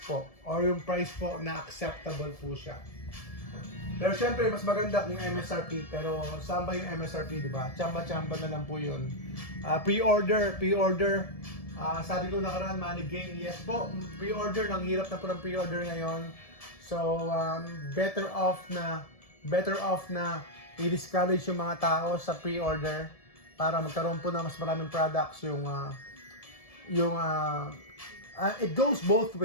po. Or yung price po na acceptable po siya. Pero syempre, mas maganda kung MSRP. Pero saan ba yung MSRP, di ba? Chamba-chamba na lang po yun. Pre-order. Sabi ko nakaraan, Money Game. Yes po, pre-order. Nang hirap na po ng pre-order ngayon. So, better off na i-discourage yung mga tao sa pre-order para magkaroon po na mas maraming products it goes both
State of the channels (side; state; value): right; late; 1.7 ms